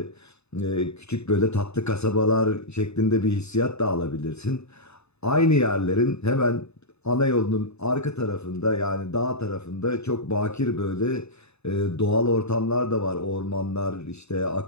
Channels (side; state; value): right; late; 0.80 ms